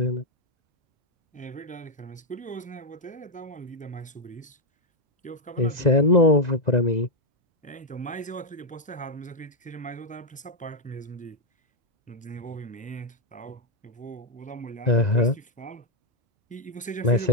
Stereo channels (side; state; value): both; normal; correlation 0.00